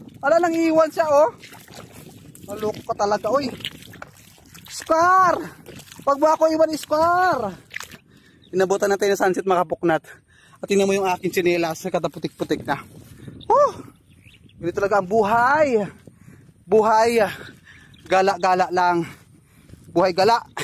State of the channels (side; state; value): both; identical; correlation 1.00